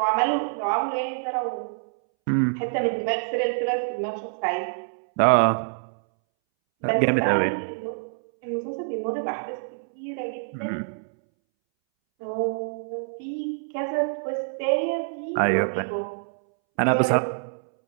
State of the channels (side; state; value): left; silent; 61 dB below the other